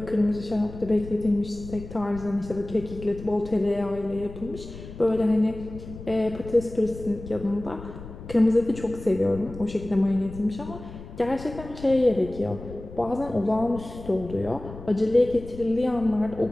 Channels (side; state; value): left; noise; rumble, 14 dB below the sound